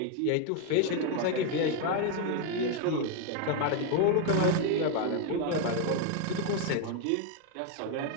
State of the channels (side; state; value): both; different; correlation 0.01